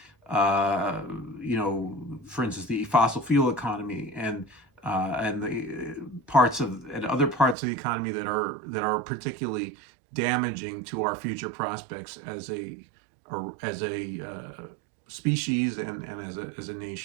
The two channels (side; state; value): left; drops out; at 7.6 s